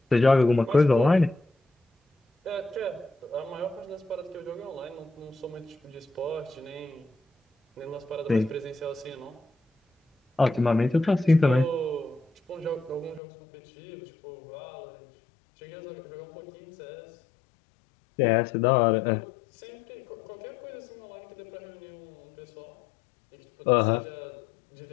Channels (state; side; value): drops out; right; at 13.2 s